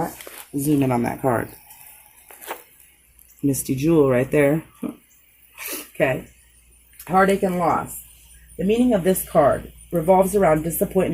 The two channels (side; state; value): both; identical; correlation 1.00